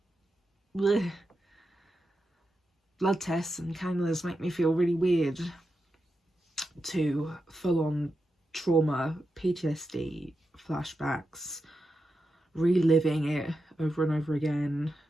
bleh. Blood tests and cannulas make me feel really weird, to full-on trauma, PTSD, flashbacks, reliving it over and over again.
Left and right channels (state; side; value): normal; both; correlation 0.88